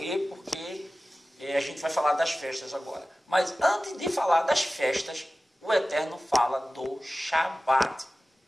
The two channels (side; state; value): both; normal; correlation 0.96